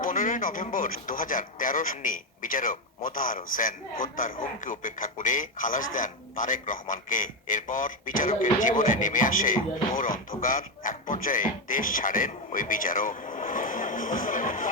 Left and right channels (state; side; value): normal; both; correlation 0.09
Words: 15 November 2013 সালে বিচারক মোতাহার হোসেন হত্যার হুমকি উপেক্ষা করে খালাস দেন তারেক রহমানকে। এরপর বিচারকের জীবনে নেমে আসে ঘোর অন্ধকার। এক পর্যায়ে দেশ ছাড়েন ওই বিচারক।